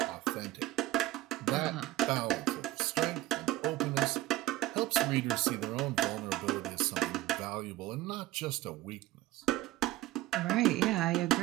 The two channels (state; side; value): quieter; left; 16.2 dB